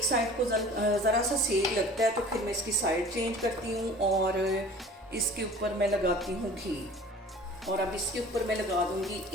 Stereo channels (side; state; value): both; normal; correlation 0.45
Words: साइड को ज़रा सा सेक लगता है तो फिर मैं इसकी साइड चेंज करती हूँ और इसके ऊपर मैं लगाती हूँ घी। और अब इसके ऊपर मैं लगा दूँगी